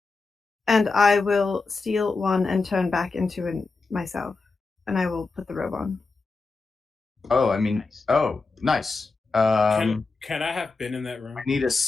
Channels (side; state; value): right; quieter; 4.0 dB